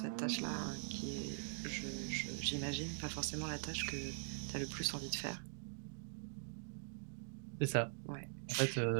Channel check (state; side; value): silent; left; digital silence